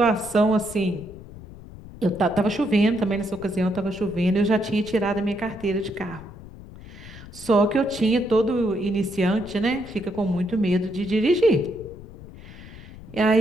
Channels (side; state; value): left; noise; rumble, 16 dB below the sound